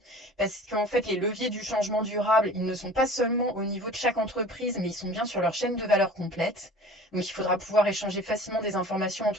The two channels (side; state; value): both; normal; correlation 0.43